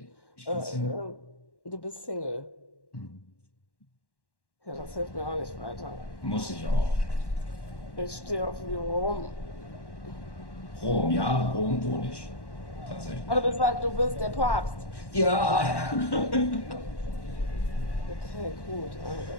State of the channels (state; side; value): late; right; 1.1 ms